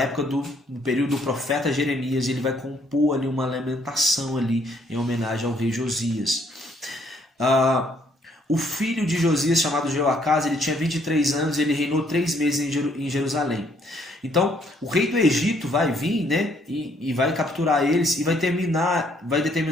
no período do profeta Jeremias, e ele vai compor ali uma lamentação ali em homenagem ao rei Josias. O filho de Josias, chamado Jeoacás, ele tinha 23 anos e ele reinou 3 meses em Jerusalém. Então, o rei do Egito vai vir, né, e vai capturar eles e vai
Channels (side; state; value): both; normal; correlation 0.67